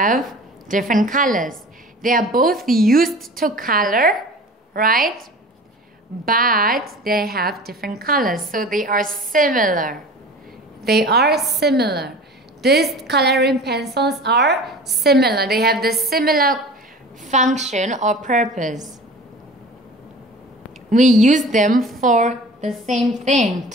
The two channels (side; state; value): both; normal; correlation 0.40